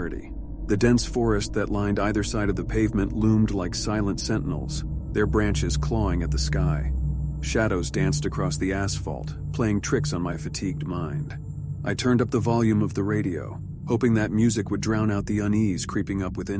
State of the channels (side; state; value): both; identical; correlation 1.00